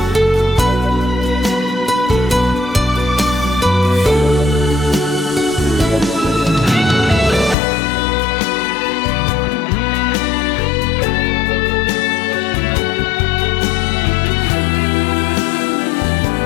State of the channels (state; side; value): drops out; right; at 7.6 s